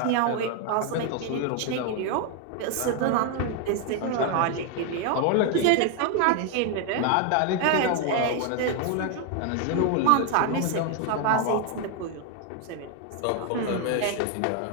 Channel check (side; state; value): both; different; correlation 0.01